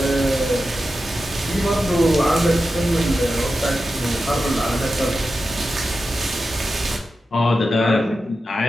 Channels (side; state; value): both; normal; correlation 0.91